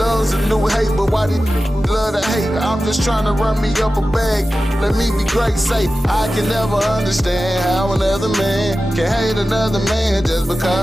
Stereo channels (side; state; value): both; normal; correlation 0.94